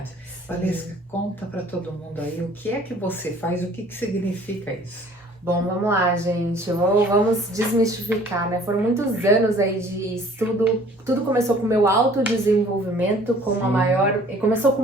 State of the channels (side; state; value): both; normal; correlation 0.53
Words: Valesca, conta para todo mundo aí o que é que você faz, o que significa isso? Bom, vamos lá, gente. Vamos desmistificar, né? Foram muitos anos aí de estudo. Tudo começou com o meu autodesenvolvimento, como a maior. Começou